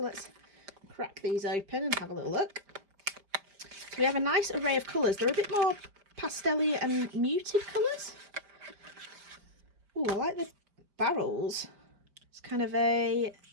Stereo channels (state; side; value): late; left; 5.0 ms